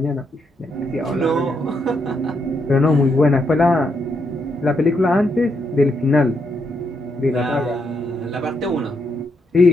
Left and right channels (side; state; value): both; normal; correlation 0.79